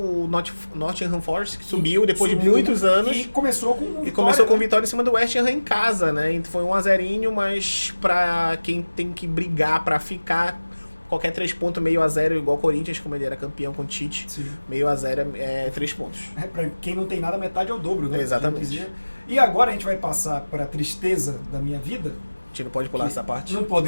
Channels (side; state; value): both; inverted; correlation -1.00